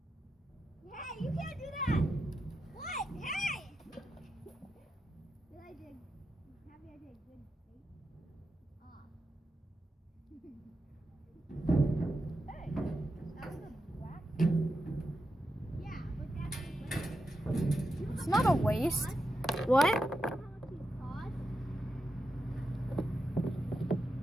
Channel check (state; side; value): normal; both; correlation 0.87